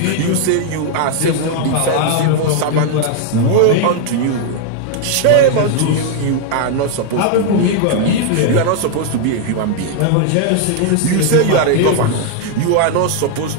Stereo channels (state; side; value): different; both; correlation 0.00